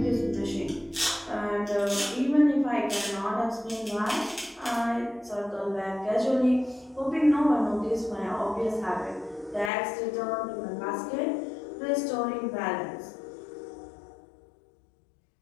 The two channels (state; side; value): drops out; right; at 9.7 s